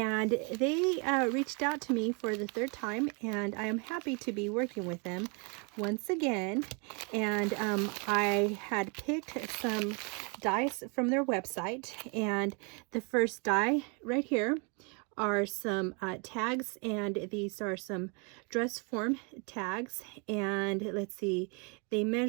they reached out to me for the third time, and I am happy to be working with them once again. And I had picked some dies from their website, and the first die right here are some tags, and these are some dress form tags, and let's see, they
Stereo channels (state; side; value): quieter; left; 34.5 dB